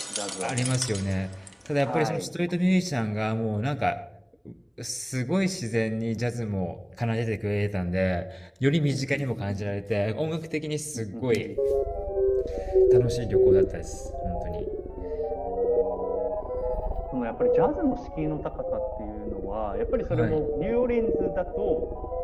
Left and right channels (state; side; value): identical; both; correlation 1.00